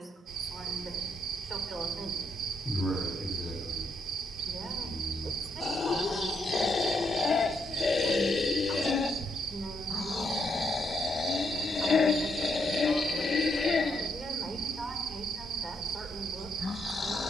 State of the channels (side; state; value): both; normal; correlation 0.76